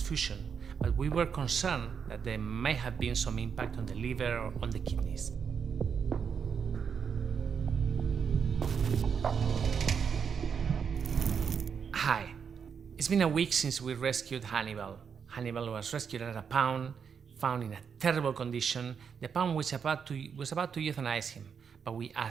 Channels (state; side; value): quieter; left; 6.7 dB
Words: but we were concerned that there may have been some impact on the liver or on the kidneys. Hi, it's been a week since we rescued Hannibal. Hannibal was rescued at a pound, found in a terrible condition. The pound was about to euthanize him, but we